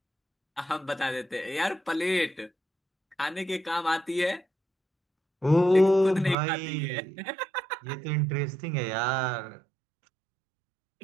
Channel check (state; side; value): drops out; left; at 6.4 s